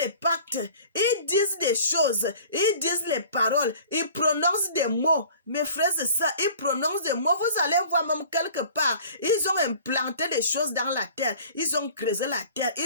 pactes, ils disent des choses, ils disent les paroles, ils prononcent des mots. Mes frères, c'est ça, ils prononcent des mots. Vous allez voir même quelque part, ils ont implanté des choses dans la terre, ils ont creusé la terre,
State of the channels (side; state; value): both; inverted; correlation -0.47